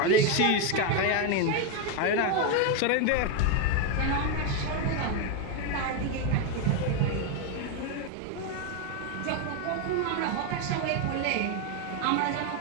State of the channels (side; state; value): both; different; correlation 0.02